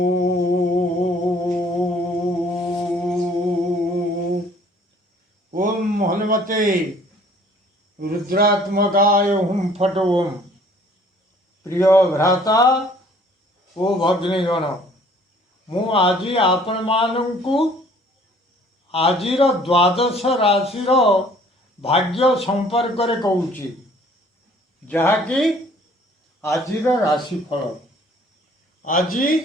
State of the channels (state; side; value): normal; both; correlation 0.56